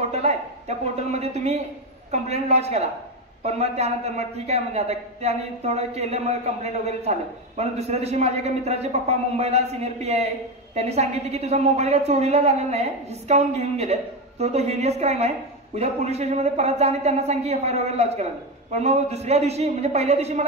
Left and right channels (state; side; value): normal; both; correlation 0.14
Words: आहे त्या पोर्टलमध्ये तुम्ही कंप्लेंट लॉन्च करा. पण मग त्यानंतर मग ठीक आहे म्हणजे आता त्याने थोडं केलं मग कंप्लेंट वगैरे झालं. पण दुसऱ्या दिवशी माझ्या एका मित्राचे पप्पा मुंबईला सिनियर PI आहे त्यांनी सांगितले की तुझा मोबाईल काय चोरीला झालेला नाही हिसकावून घेऊन गेले तो हिनियस क्राईम आहे उद्या पोलीस स्टेशनमध्ये परत जा आणि त्यांना सांग की FIR वगैरे लॉन्च करा. पण मग दुसऱ्या दिवशी म्हणजे पहिल्या दिवशी